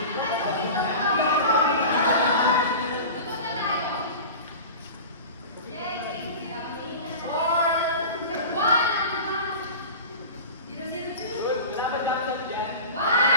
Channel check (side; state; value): both; inverted; correlation -0.33